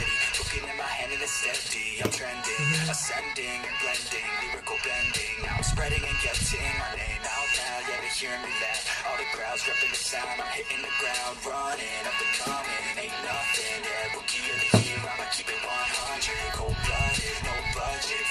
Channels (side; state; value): both; identical; correlation 1.00